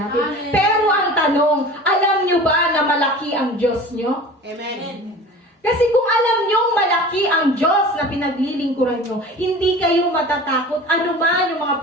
Amen. Pero ang tanong, alam nyo ba na malaki ang Diyos nyo? Amen. Kasi kung alam nyong malaki ang Diyos na pinaglilingkuran nyo, hindi kayo matatakot anuman yung mga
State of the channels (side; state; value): both; normal; correlation 0.38